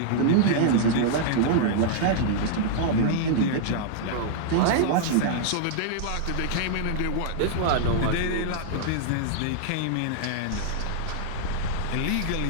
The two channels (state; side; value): different; both; correlation -0.01